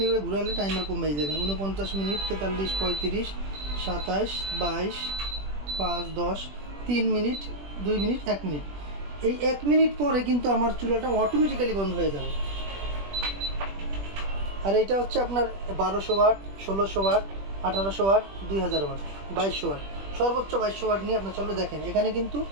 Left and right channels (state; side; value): late; left; 20 ms